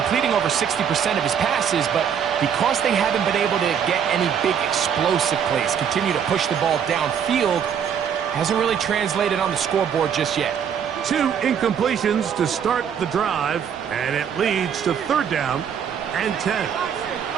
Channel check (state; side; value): quieter; left; 8.0 dB